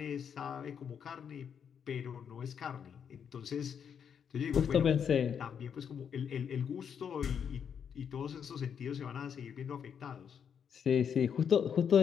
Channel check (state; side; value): quieter; right; 7.6 dB